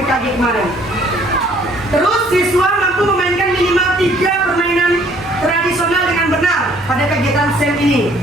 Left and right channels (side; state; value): both; normal; correlation 0.60